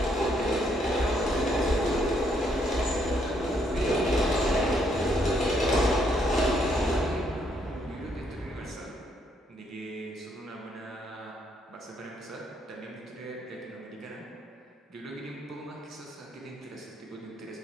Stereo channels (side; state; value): both; normal; correlation 0.72